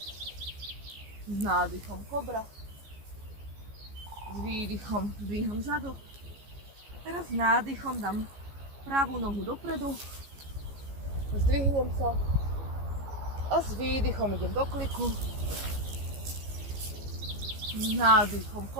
s nádychom kobra, s výdychom zdvíham zadok. Teraz s nádychom dám pravú nohu dopredu, zdvihnem sa a s výdychom idem do kliku, s nádychom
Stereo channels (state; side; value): late; left; 15 ms